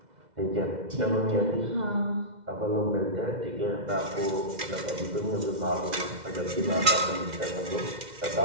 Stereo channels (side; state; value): left; late; 2.0 ms